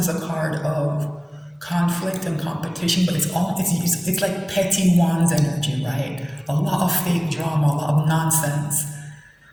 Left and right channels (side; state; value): both; identical; correlation 1.00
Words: a card of conflict and competition, but it's like petty Wands energy, right? A lot of fake drama, a lot of nonsense,